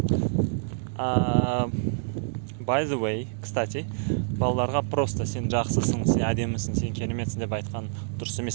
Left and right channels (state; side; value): silent; left; digital silence